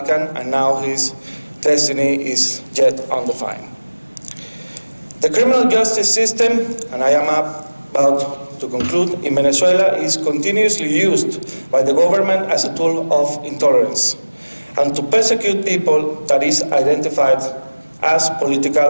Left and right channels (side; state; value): both; inverted; correlation -1.00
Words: and now his destiny is yet undefined. The criminal justice system, and I am about to conclude, in Venezuela is continuously used by the government as a tool of intolerance and to persecute people that is identified as political